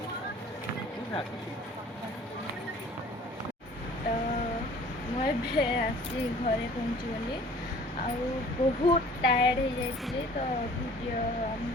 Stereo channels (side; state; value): both; normal; correlation 0.50